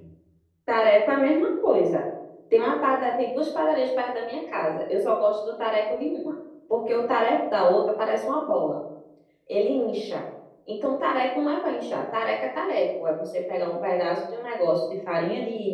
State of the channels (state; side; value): identical; both; correlation 1.00